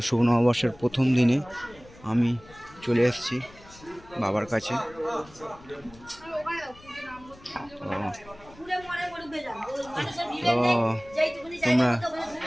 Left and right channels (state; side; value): noise; left; rumble, 23 dB below the sound